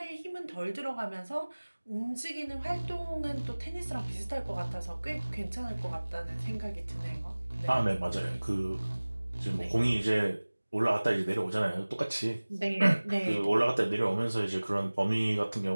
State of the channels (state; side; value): inverted; both; correlation -1.00